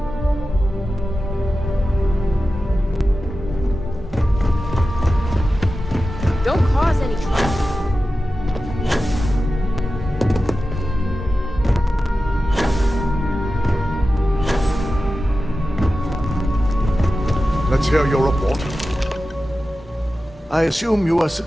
Don't cause any trouble. hear your report. I assume you were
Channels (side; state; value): both; normal; correlation 0.93